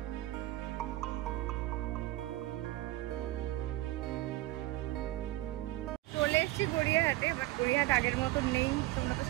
চলে এসছি গড়িয়াহাটে, বাট গড়িয়াহাট আগের মতন নেই, তোমরা তো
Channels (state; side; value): quieter; left; 17.6 dB